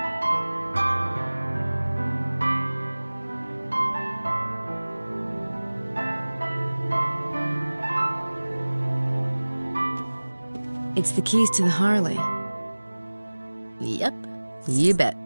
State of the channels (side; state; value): both; inverted; correlation -1.00